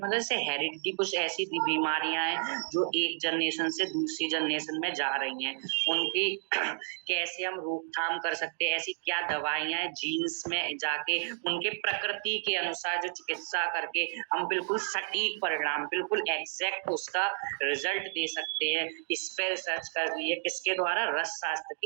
जैसे हेरिडिटी, कुछ ऐसी बीमारियां हैं जो एक जनरेशन से दूसरी जनरेशन में जा रही हैं, उनकी कैसे हम रोकथाम कर सकते हैं, ऐसी क्या दवाइयां हैं जीन्स में जाके उनके प्रकृति के अनुसार जो चिकित्सा करके हम बिल्कुल सटीक परिणाम, बिल्कुल एग्जैक्ट उसका रिजल्ट दे सकते हैं। इस पे रिसर्च कर रही है किसके द्वारा? रस शास्त्र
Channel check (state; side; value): silent; left; digital silence